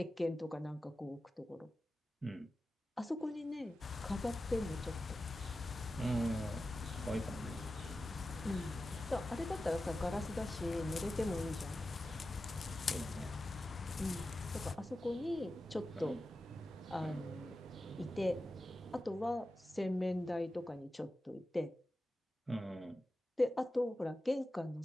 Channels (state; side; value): normal; both; correlation 0.93